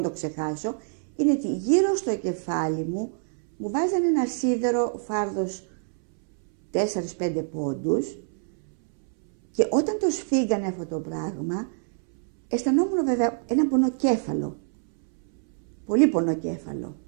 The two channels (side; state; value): left; silent; 61 dB below the other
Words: το ξεχάσω, είναι ότι γύρω στο κεφάλι μου μου βάζανε ένα σίδερο φάρδος 4-5 πόντους και όταν το σφίγγανε αυτό το πράγμα, αισθανόμουν βέβαια ένα πονοκέφαλο. Πολύ πονοκέφαλο.